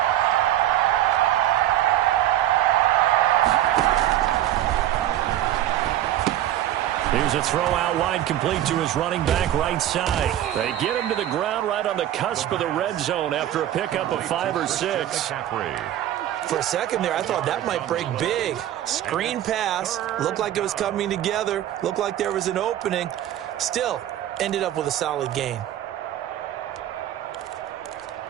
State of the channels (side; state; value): left; quieter; 12.5 dB